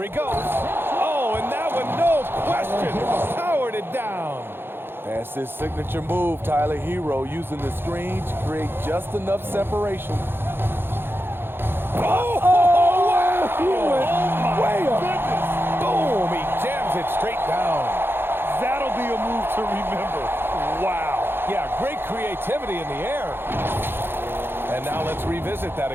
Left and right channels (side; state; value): left; late; 0.10 ms